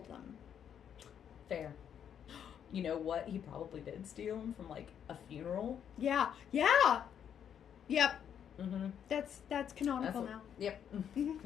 them. Fair. You know what? He probably did steal them from, like, a funeral. Yeah. Yep. Mm-hmm. That's canonical now. Yep.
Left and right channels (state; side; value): quieter; right; 8.7 dB